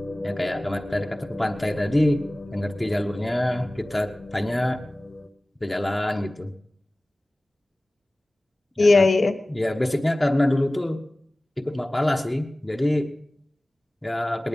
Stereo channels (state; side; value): normal; both; correlation 0.98